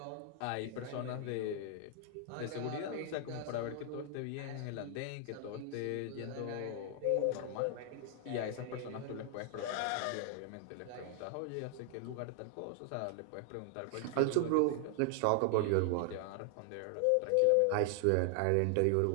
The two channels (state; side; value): different; both; correlation 0.00